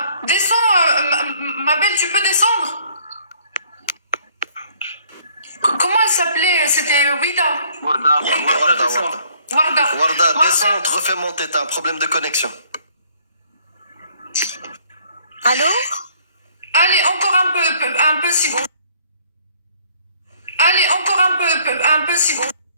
descends, ma belle, tu peux descendre? Comment elle s'appelait? C'était Wida. Warda, Warda, descends. Warda. Warda. Warda, descends, te refais monter. T'as un problème de connexion. Allô? Allez, encore un peu si bon. Allez, encore un peu si bon.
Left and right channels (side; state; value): both; inverted; correlation -0.61